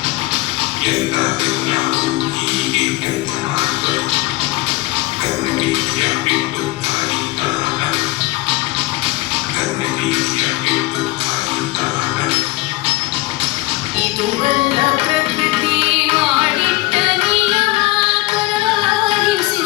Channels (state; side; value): quieter; right; 20.3 dB